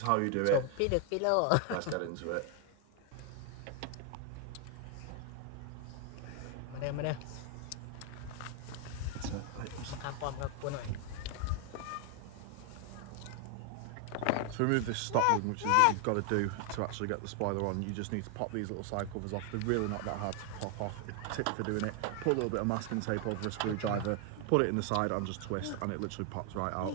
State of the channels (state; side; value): different; both; correlation 0.00